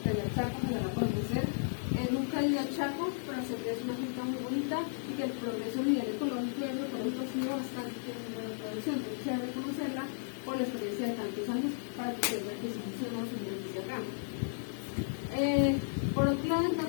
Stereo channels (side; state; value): right; silent; digital silence